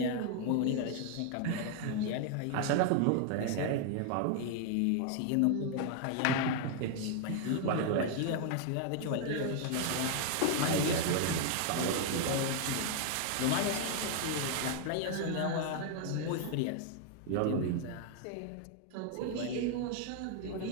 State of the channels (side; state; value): both; different; correlation 0.00